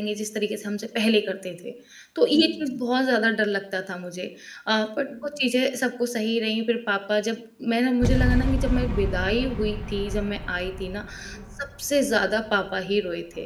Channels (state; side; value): identical; both; correlation 1.00